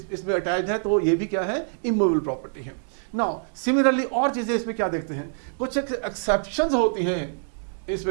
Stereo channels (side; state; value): left; silent; digital silence